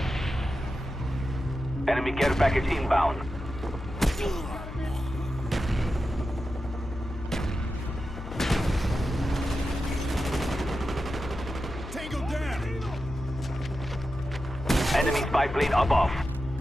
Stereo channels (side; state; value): left; noise; hum, 11 dB below the sound